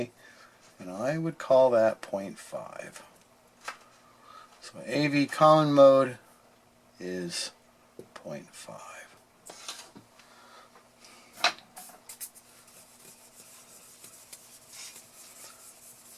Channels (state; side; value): identical; both; correlation 1.00